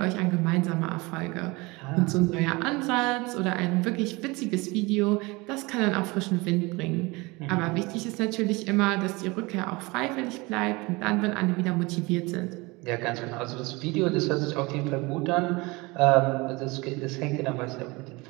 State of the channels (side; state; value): left; quieter; 24.3 dB